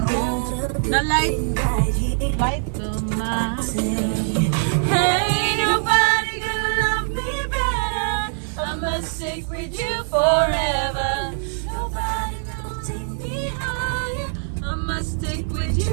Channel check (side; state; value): left; silent; 64 dB below the other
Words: light to my hey, nobody gonna love me better. I must stick with you forever. Nobody gonna take me higher. I must stick with